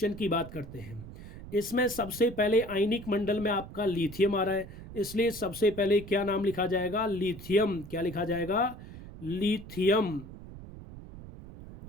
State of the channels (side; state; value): right; noise; rumble, 14 dB below the sound